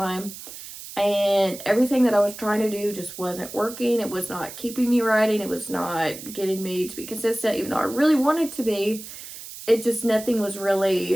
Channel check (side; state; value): right; noise; hiss, 13 dB below the sound